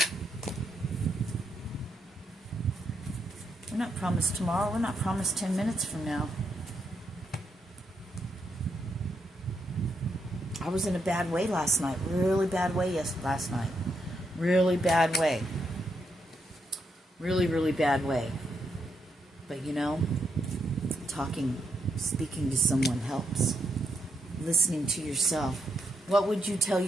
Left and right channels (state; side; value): normal; both; correlation 0.80